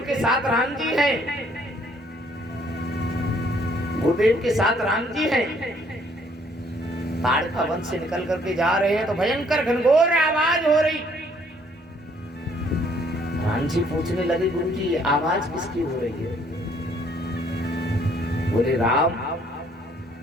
के साथ राम जी हैं, गुरुदेव के साथ राम जी हैं। ताड़ का वन से निकल करके जा रहे हैं तो भयंकर घनघोर आवाज हो रही। राम जी पूछने लगे, गुरु जी आवाज किसकी हो रही है? बोले राम,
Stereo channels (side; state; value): both; normal; correlation 0.64